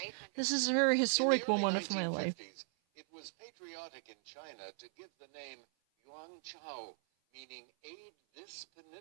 This is a very historic moment of my life. It was patriotic in China to give the name Yuanchao, meaning aid this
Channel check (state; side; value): silent; left; 52 dB below the other